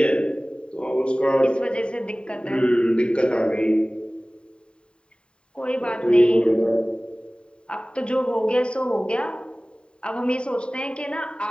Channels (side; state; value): right; late; 0.052 ms